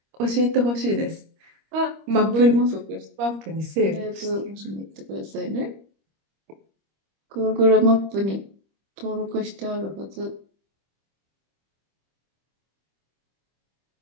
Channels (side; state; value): left; late; 25 ms